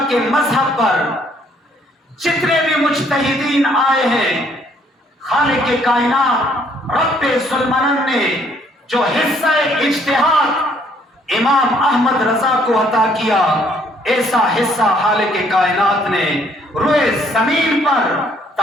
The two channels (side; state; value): both; normal; correlation 0.65